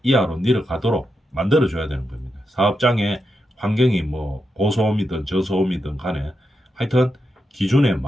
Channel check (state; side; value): normal; both; correlation 0.86